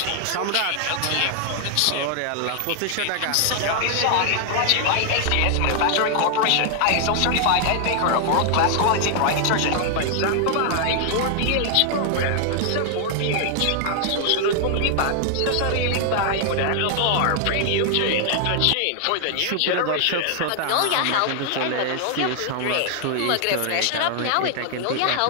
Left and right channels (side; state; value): both; different; correlation 0.00